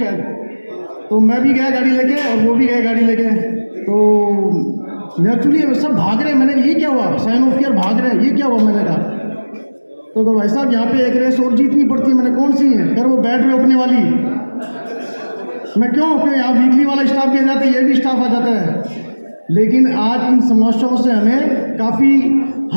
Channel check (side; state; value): both; inverted; correlation -1.00